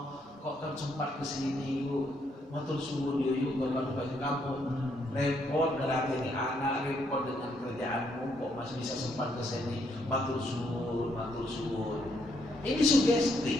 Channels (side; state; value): both; normal; correlation 0.73